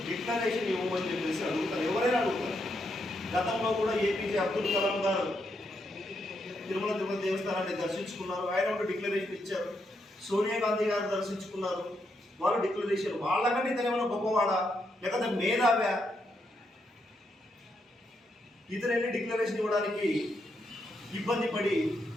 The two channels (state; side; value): normal; both; correlation 0.80